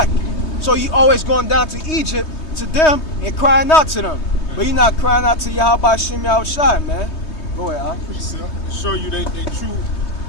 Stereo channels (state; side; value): late; right; 3.2 ms